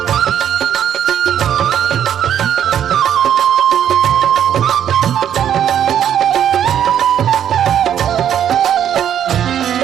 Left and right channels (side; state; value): left; quieter; 9.8 dB